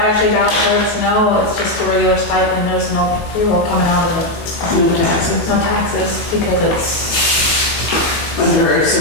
vouchers, no, it's just a regular stipend, there's no payroll coming out of it. No taxes. No taxes, because it's, Under a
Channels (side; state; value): right; late; 19 ms